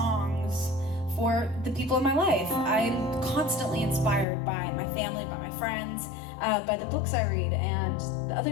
for the people in my life. I'm constantly inspired by my family, by my friends, by the books I read, and the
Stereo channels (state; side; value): drops out; right; at 4.2 s